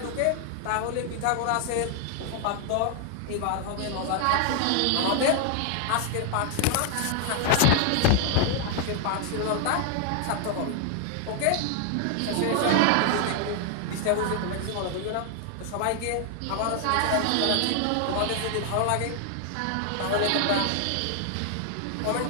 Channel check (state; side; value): different; both; correlation 0.00